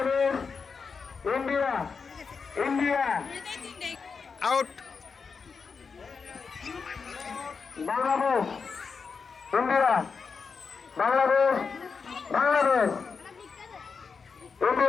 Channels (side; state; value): right; quieter; 5.3 dB